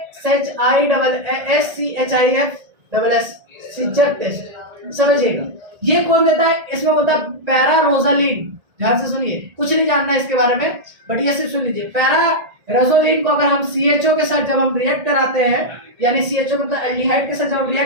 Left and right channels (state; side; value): late; left; 1.8 ms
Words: AHISCHIF सीजर टेस्ट, समझिएगा। ये कौन देता है, इसमें होता है पैरारोजालिन। ध्यान से सुनिए, कुछ नहीं जानना है इसके बारे में, बट ये सिर्फ सुन लीजिए। पैरारोजालिन को अगर हम CHO के साथ जब हम रिएक्ट कराते हैं, यानी CHO मतलब एल्डिहाइड के साथ जब हम